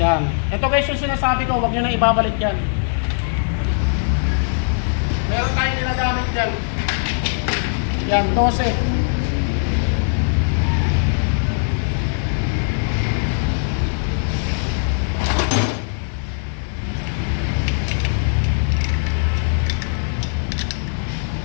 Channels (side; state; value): right; silent; digital silence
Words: Ito guys yung sinasabi ko, huwag nyo na ibabalik yan. Meron tayong ginagamit dyan. Yan, 12.